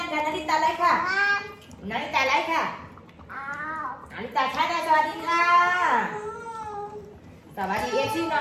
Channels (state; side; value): identical; both; correlation 1.00